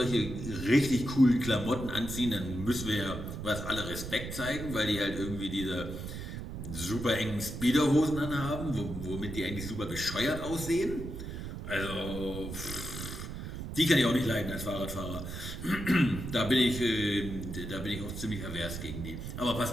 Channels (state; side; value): noise; right; rumble, 7 dB below the sound